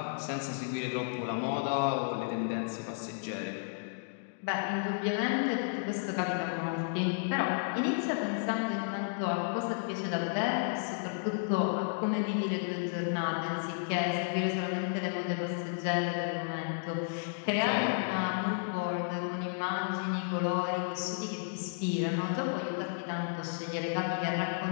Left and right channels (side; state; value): right; silent; digital silence